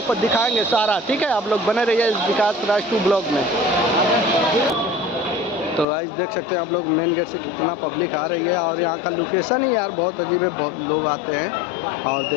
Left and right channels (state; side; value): drops out; right; at 5.9 s